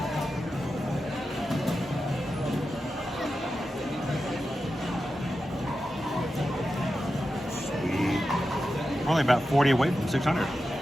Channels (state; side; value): normal; both; correlation 0.91